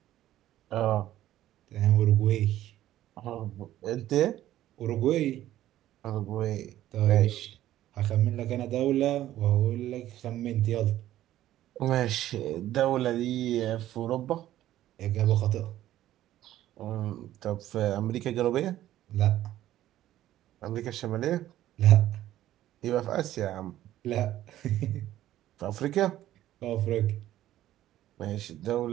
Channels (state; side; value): quieter; left; 13.5 dB